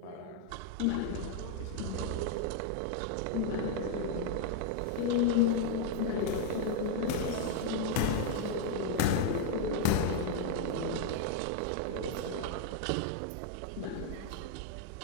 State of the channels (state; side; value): different; both; correlation 0.00